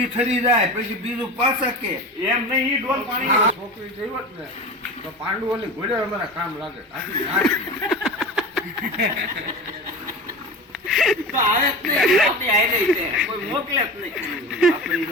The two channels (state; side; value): normal; both; correlation 0.30